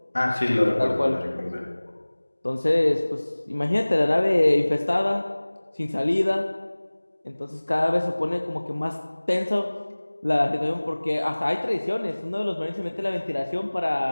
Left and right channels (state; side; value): inverted; both; correlation -1.00